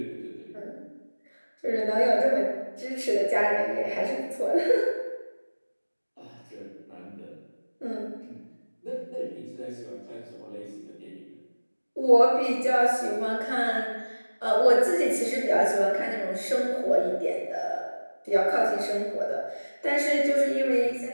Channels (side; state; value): both; inverted; correlation -1.00